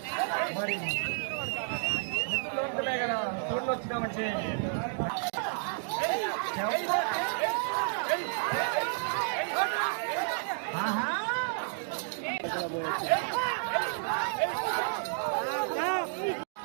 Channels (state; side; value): silent; left; digital silence